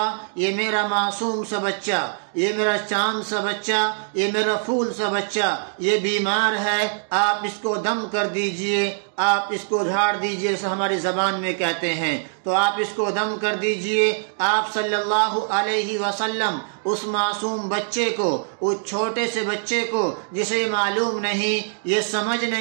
یہ میرا معصوم سا بچہ، یہ میرا چاند سا بچہ، یہ میرا پھول سا بچہ، یہ بیمار ہے، آپ اس کو دم کر دیجئے، آپ اس کو جھاڑ دیجئے، جیسے ہماری زبان میں کہتے ہیں، تو آپ اس کو دم کر دیجئے۔ آپ صلی اللہ علیہ وسلم اس معصوم بچے کو، اس چھوٹے سے بچے کو جسے یہ معلوم نہیں، یہ سمجھ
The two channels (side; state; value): left; silent; digital silence